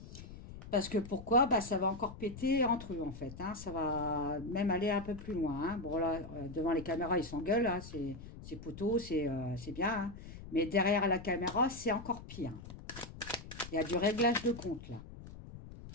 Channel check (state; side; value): noise; left; rumble, 14 dB below the sound